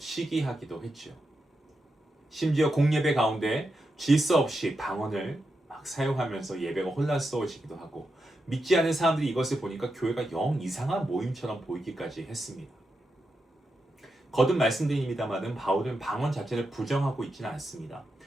했죠. 심지어 공예배 가운데 질서 없이 방언을 막 사용하면서 예배가 혼란스러워지기도 하고, 믿지 않은 사람들이 이것을 보니까 교회가 영 이상한 모임처럼 보이기까지 했습니다. 거듭 말씀드립니다마는 바울은 방언 자체를 부정하고 있지는 않습니다.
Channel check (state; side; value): normal; both; correlation 0.87